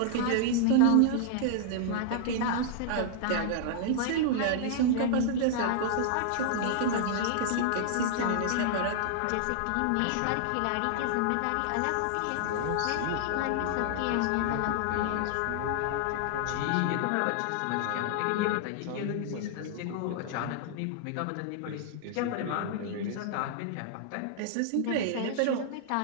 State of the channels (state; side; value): different; both; correlation -0.01